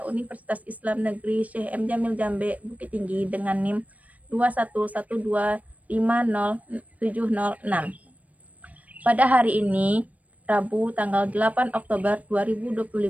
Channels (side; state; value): left; late; 0.070 ms